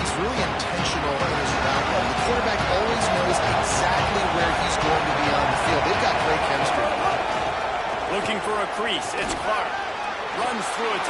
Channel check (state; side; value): identical; both; correlation 1.00